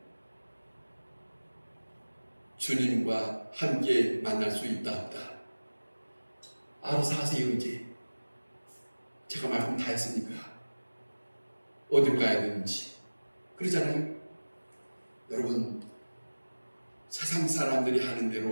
주님과 함께 만날 수 있다 없다. 알아서 하세요. 이제 제가 말씀 다 했으니까 어디로 가야 되는지 그러잖아요. 여러분, 세상 사람들이 하는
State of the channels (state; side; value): inverted; both; correlation -1.00